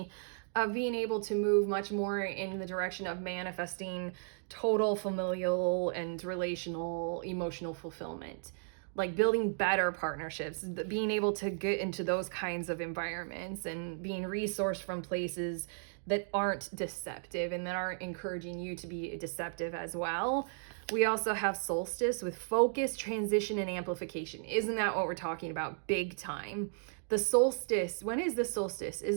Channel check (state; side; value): silent; left; digital silence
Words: Of being able to move much more in the direction of manifesting total familial and relational emotional fulfillment, like building better partnerships, being able to get into those kinds of environments and being resourced from places that aren't deceptive and that aren't encouraging you to be deceptive as well. We also have solstice with focus, transition, and amplification. Isn't that what we're talking about? Big time. The solstice, when is the solstice?